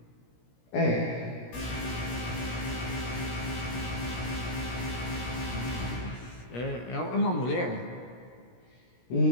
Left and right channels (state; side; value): late; right; 17 ms